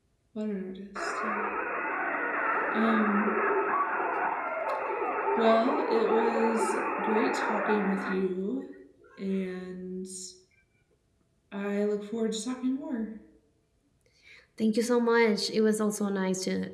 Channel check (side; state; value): both; identical; correlation 1.00